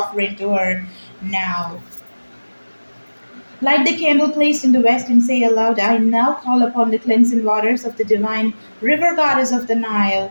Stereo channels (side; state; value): both; inverted; correlation -1.00